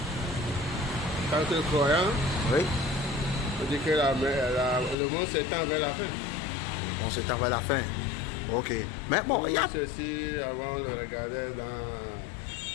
tant que croyant, Oui. on dit que le monde s'étend vers la fin. On s'étend vers la fin. Ok. Mais bon, il y a... Ceci, avant, on le regardait dans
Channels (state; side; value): drops out; right; at 5.0 s